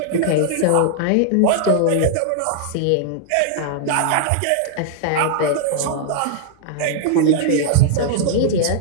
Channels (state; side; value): different; both; correlation -0.01